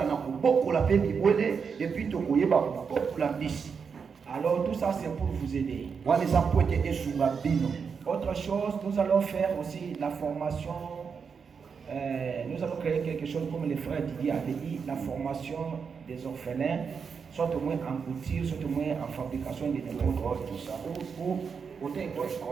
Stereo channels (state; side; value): quieter; left; 6.0 dB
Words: na kobokola mpe bibwele epuis tokoyeba kobokola mbisi. Alors tout ça c'est pour vous aider. wana eza mpo ete esunga bino. Autre chose, nous allons faire aussi la formation. Nous allons créer quelque chose comme les frères Didier avait dit, la formation des orphelins, soit au moins en couture, soit au moins en fabrication de n'importe tout ça. Ou